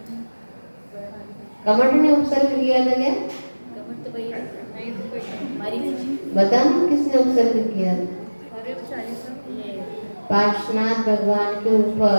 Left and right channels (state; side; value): inverted; both; correlation -1.00